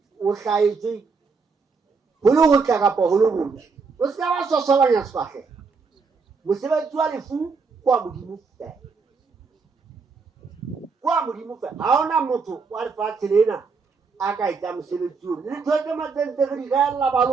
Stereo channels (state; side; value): quieter; left; 4.9 dB